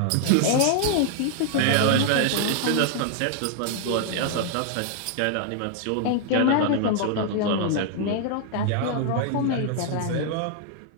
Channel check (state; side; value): different; both; correlation 0.00